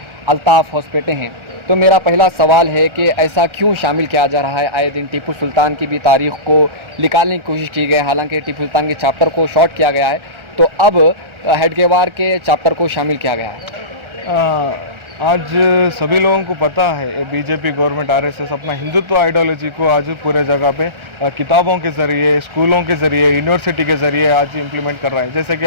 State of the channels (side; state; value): left; late; 1.4 ms